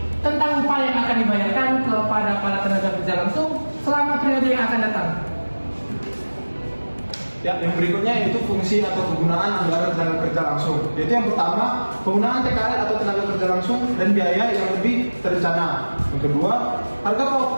tentang upah yang akan dibayarkan kepada para tenaga kerja langsung selama periode yang akan datang. Ya, yang berikutnya yaitu fungsi atau kegunaan anggaran tenaga kerja langsung. Yaitu yang pertama, penggunaan TKL atau tenaga kerja langsung dan biaya yang lebih terencana. Yang kedua,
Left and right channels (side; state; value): both; inverted; correlation -1.00